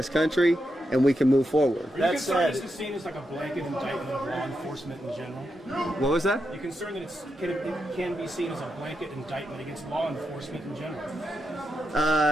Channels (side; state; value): both; normal; correlation 0.85